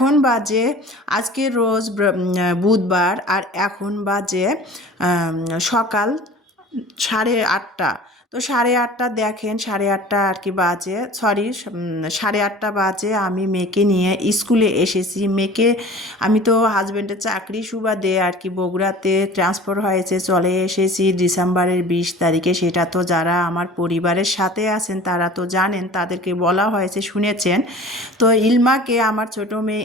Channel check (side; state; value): both; normal; correlation 0.42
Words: বাজে আজকে রোজ বুধবার, আর এখন বাজে সকাল 8:30। তো 8:30 দেখেন, 8:30 আর কি বাজে, সরি 8:30 বাজে আমি মেয়েকে নিয়ে স্কুলে এসেছি। মেয়েকে আমি তো হাজব্যান্ডের চাকরি সুবাদে আর কি বগুড়াতে ট্রান্সফার হয়েছে, চলে এসেছি ডিসেম্বরের 20 তারিখে। সেটা তো যারা আমার পরিবারের সাথে আছেন তারা তো জানেন, তাদেরকে বলা হয়েছে, শুনেছেন। তো ইলমাকে, আমার ছোট মেয়ে